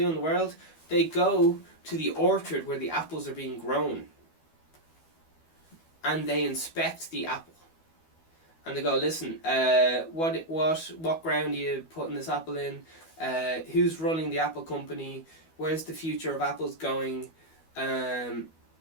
in the world? They go to the orchard where the apples are being grown, and they inspect the apple. And they go, listen, what ground are you putting this apple in? Who's running the apple company? Where's the future of apples going?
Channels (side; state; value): right; late; 12 ms